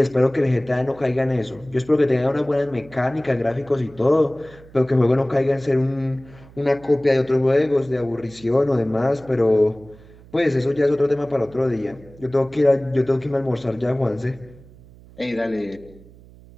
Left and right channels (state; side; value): noise; right; hum, 23 dB below the sound